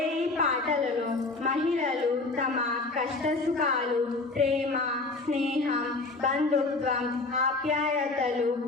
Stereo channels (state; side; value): quieter; right; 3.4 dB